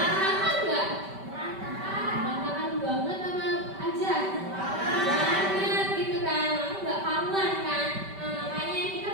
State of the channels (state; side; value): late; left; 5.1 ms